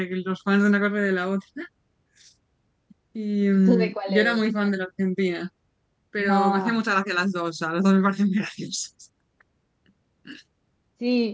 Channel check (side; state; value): both; identical; correlation 1.00